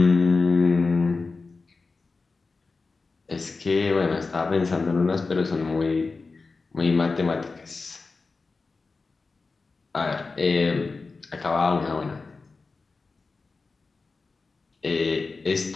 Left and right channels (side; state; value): right; quieter; 4.1 dB